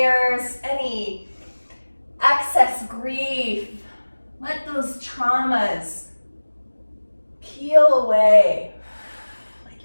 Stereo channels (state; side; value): inverted; both; correlation -1.00